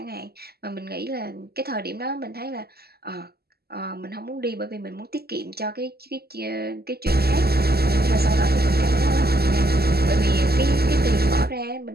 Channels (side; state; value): left; late; 0.46 ms